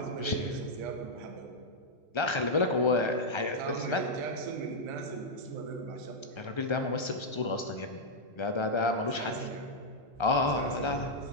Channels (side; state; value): right; late; 1.3 ms